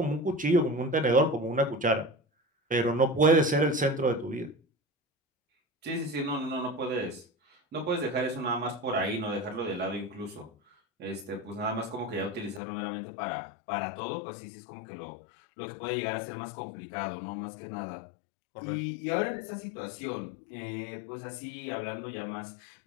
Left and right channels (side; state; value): right; drops out; at 12.6 s